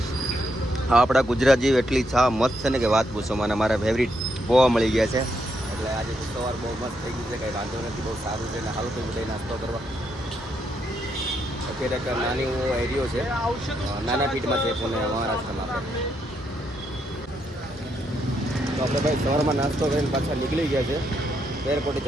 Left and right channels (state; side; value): normal; both; correlation 0.78